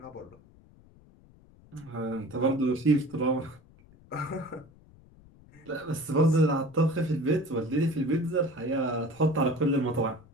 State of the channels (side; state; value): left; noise; rumble, 25 dB below the sound